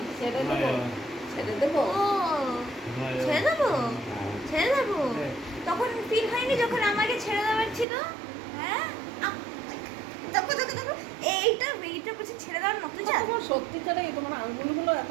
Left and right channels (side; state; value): left; drops out; at 7.9 s